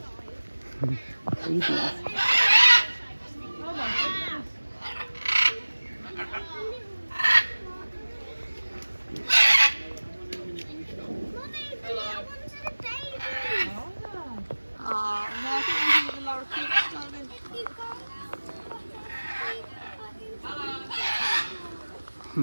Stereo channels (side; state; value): both; inverted; correlation -1.00